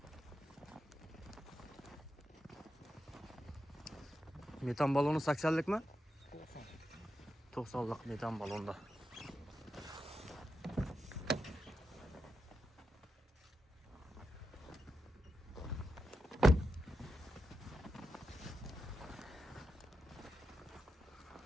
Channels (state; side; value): normal; both; correlation 0.88